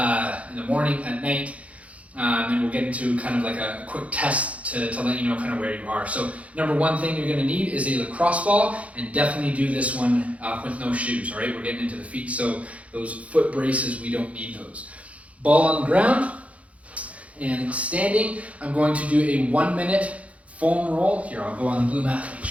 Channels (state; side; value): late; left; 0.065 ms